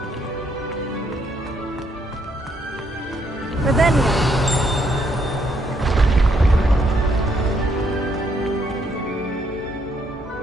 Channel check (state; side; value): normal; both; correlation 0.72